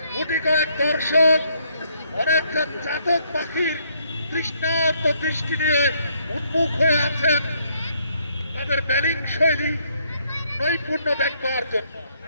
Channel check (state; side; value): inverted; both; correlation -0.69